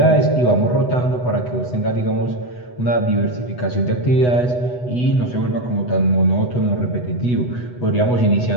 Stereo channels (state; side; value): late; right; 8.1 ms